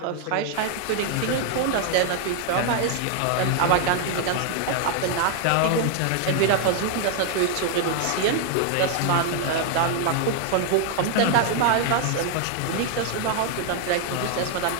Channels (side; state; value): both; different; correlation 0.00